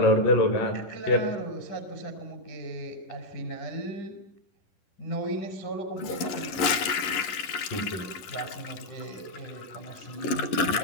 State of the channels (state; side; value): late; right; 10 ms